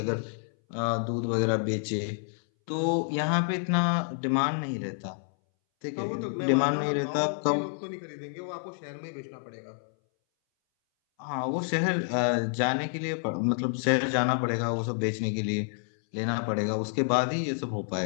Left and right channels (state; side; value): silent; right; 59 dB below the other